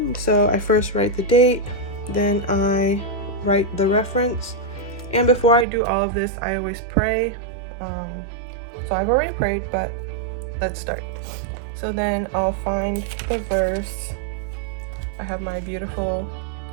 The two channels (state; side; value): drops out; left; at 5.7 s